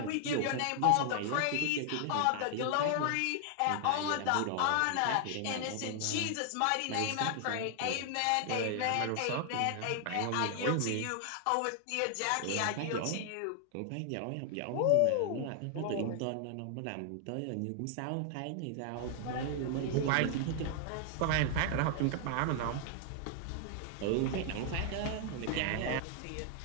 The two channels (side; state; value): both; different; correlation 0.00